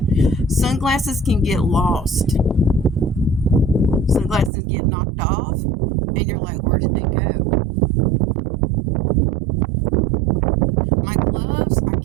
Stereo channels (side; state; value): left; drops out; at 4.5 s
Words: Sunglasses can get lost. Sunglasses get knocked off, and you're like, where did they go? My gloves, I